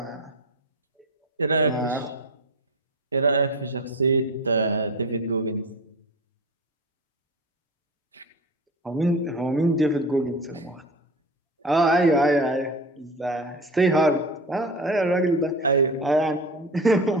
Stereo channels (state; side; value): normal; both; correlation 0.30